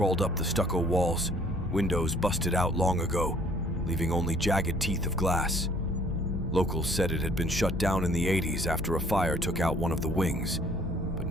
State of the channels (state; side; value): normal; both; correlation 0.58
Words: up the stucco walls, windows busted out long ago, leaving only jagged teeth of glass. Locals said it had been shut down in the 80s after a fire took out one of the wings, but